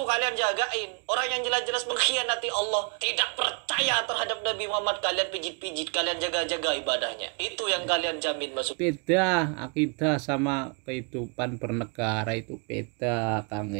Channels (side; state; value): left; quieter; 36.4 dB